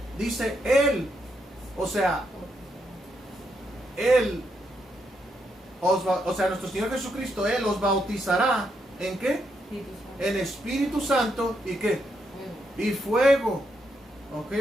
Dice él, o sea, nuestro Señor Jesucristo, Él os bautizará ¿en qué? En Espíritu Santo y ¿qué? Y fuego. ¿Ok,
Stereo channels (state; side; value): normal; both; correlation 0.79